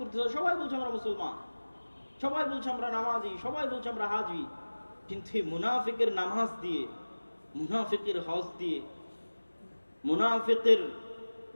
হয়। সবাই বলছে আমরা মুসলমান, সবাই বলছে আমরা নামাজি, সবাই বলছে আমরা হাজি, কিন্তু এই মুনাফিকের নামাজ দিয়ে, মুনাফিকের হজ দিয়ে, মুনাফিকের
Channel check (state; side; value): inverted; both; correlation -1.00